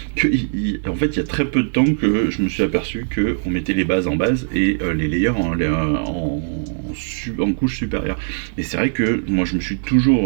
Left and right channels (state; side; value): silent; left; digital silence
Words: qu'en fait il y a très peu de temps que je me suis aperçu qu'on mettait les bases en base et les layers en couche supérieure. Et c'est vrai que moi j'ai